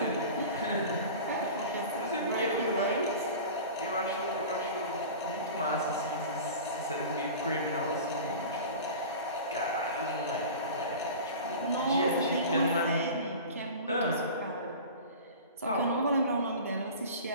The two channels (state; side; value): inverted; both; correlation -0.36